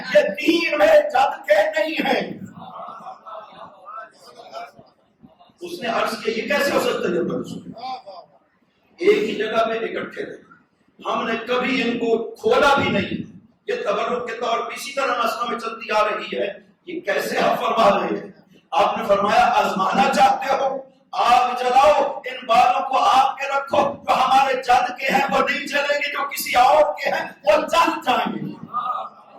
یہ 3 میرے جد کے نہیں ہیں. اس نے عرض کیا یہ کیسے ہو سکتا ہے؟ ایک ہی جگہ پہ اکٹھے رہے، ہم نے کبھی ان کو کھولا بھی نہیں. یہ تبرک کے طور پر اسی طرح نسلوں میں چلتی آ رہی ہے. یہ کیسے آپ فرما رہے ہیں؟ آپ نے فرمایا آزمانا چاہتے ہو آگ جلاؤ، ان بالوں کو آپ کے رکھو. جو ہمارے جد کے ہیں وہ نہیں چلیں گے، جو کسی اور کے ہیں وہ چل جائیں گے.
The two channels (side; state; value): both; identical; correlation 1.00